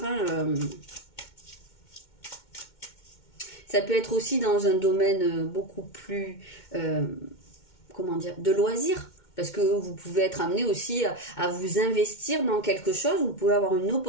hein. Ça peut être aussi dans un domaine beaucoup plus, comment dire, de loisirs. Parce que vous pouvez être amené aussi à vous investir dans quelque chose. Vous pouvez avoir une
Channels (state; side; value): late; right; 2.2 ms